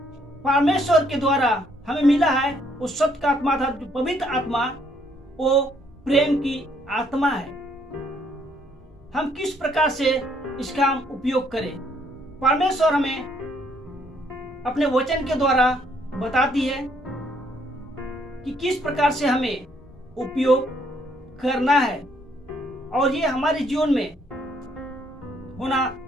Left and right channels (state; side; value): normal; both; correlation 0.68